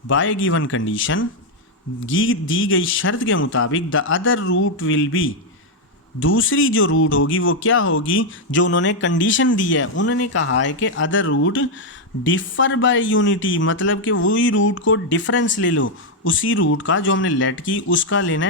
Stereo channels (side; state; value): both; normal; correlation 0.01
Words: बाय गिवन कंडीशन, दी गई शर्त के मुताबिक, the other root will be, दूसरी जो रूट होगी वो क्या होगी? जो उन्होंने कंडीशन दी है, उन्होंने कहा है कि other root differ by unity, मतलब कि वही रूट को डिफरेंस ले लो। उसी रूट का जो हमने लेट की उसका लेना